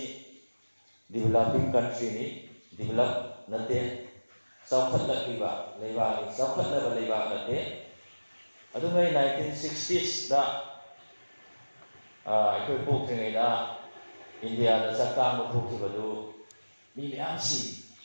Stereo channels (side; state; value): both; inverted; correlation -1.00